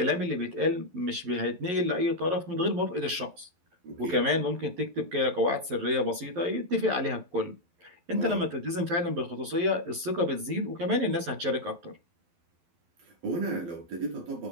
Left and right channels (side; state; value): left; late; 12 ms